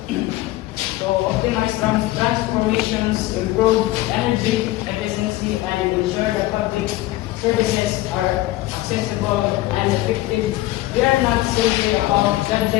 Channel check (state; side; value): quieter; right; 17.1 dB